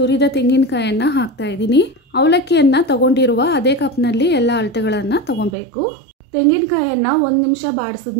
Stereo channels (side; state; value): left; drops out; at 5.6 s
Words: ತೆಂಗಿನಕಾಯನ್ನ ಹಾಕ್ತಾ ಇದ್ದೀನಿ. ಅವಲಕ್ಕಿಯನ್ನ ತಗೊಂಡಿರುವ ಅದೇ ಕಪ್ ನಲ್ಲಿ ಎಲ್ಲ ಅಳತೆಗಳನ್ನ ತಗೊಬೇಕು. ತೆಂಗಿನಕಾಯನ್ನ 1 ನಿಮಿಷ